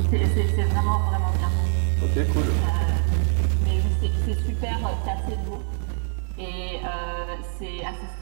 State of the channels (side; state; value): left; silent; 62 dB below the other